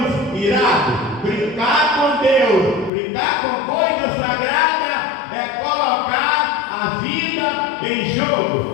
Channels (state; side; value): drops out; right; at 2.9 s